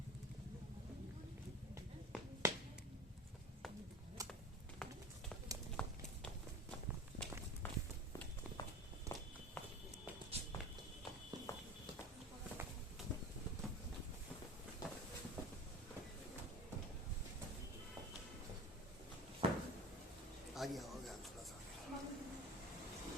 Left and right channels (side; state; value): both; normal; correlation 0.35